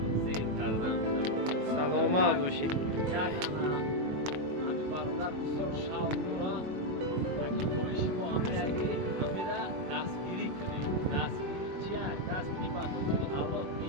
زیر کردم سلامت باشی. یک همین برادر بسیار شوق داره اگر خواهشی با همین را دستگیری کنیم دستگیری چیه؟ دستگیری با خودی الله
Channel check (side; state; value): left; late; 21 ms